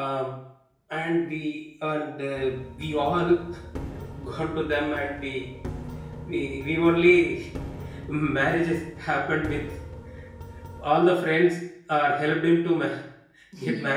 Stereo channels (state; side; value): identical; both; correlation 1.00